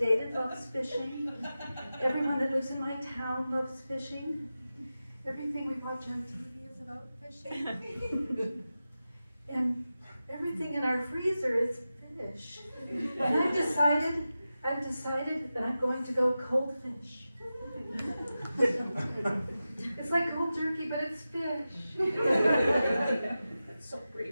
loves fishing. Everyone that lives in my town loves fishing. Everything we watch on TV is about fishing. And everything in our decided that I'm going to go cold fish. It's like cold turkey, but it's fish. That's so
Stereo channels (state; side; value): inverted; both; correlation -0.93